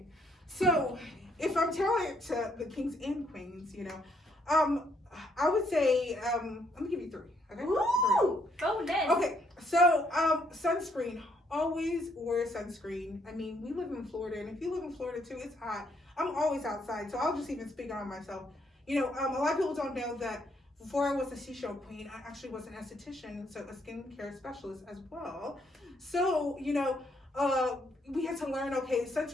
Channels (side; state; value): both; normal; correlation 0.71